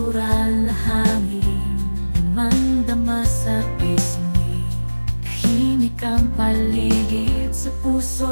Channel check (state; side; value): inverted; both; correlation -1.00